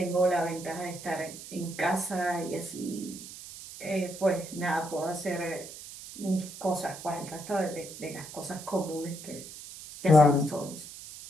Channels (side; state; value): right; noise; hiss, 13 dB below the sound